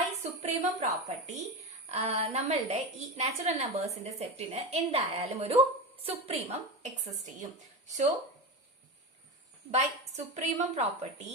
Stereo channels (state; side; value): normal; both; correlation 0.21